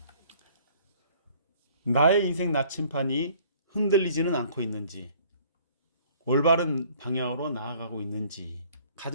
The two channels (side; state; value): both; inverted; correlation -0.56